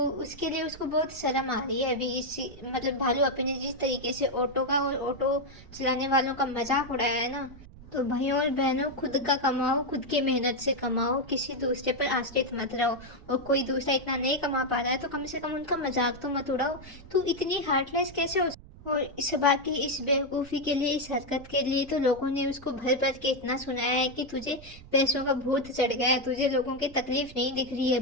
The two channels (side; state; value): right; noise; rumble, 19 dB below the sound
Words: उसके लिए उसको बहुत शर्म आ रही है अभी इस, मतलब भालू अपी ने जिस तरीके से ऑटो का और ऑटो चलाने वालों का मजाक उड़ाया है ना। तो भाइयों और बहनों, खुद का कमाओ, खुद की मेहनत से कमाओ, किसी दूसरे पर आश्रित मत रहो। और कोई दूसरा इतना नहीं कमा पा रहा है तो कम से कम उनका मजाक तो मत उड़ाओ। तू इतनी हार्टलेस कैसे हो? और इस बाकी इस बेवकूफ़ी के लिए, इस हरकत के लिए तो लोगों ने उसको भर भर के इतना सुनाया है कि तुझे पैसों का भूत चढ़ गया है, तुझे लोगों की तकलीफ नहीं दिख रही है,